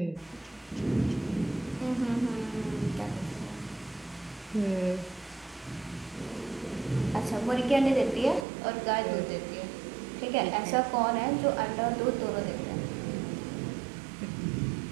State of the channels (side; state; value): left; drops out; at 8.5 s